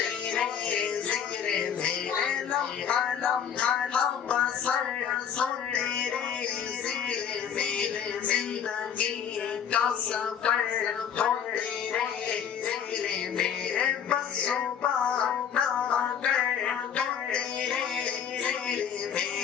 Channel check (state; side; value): quieter; right; 8.2 dB